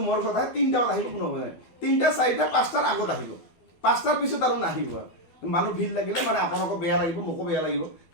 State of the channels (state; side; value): late; right; 12 ms